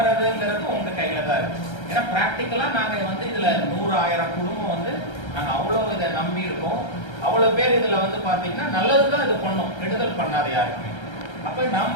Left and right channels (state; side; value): late; right; 1.3 ms